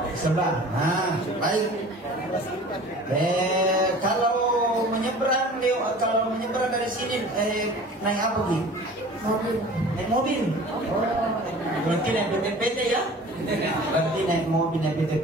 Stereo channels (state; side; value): normal; both; correlation 0.43